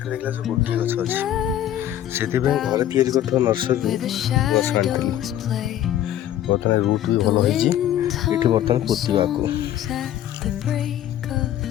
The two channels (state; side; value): quieter; right; 11.8 dB